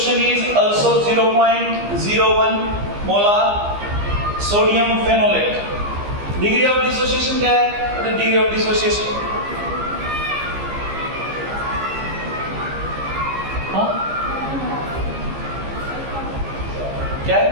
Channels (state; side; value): late; left; 15 ms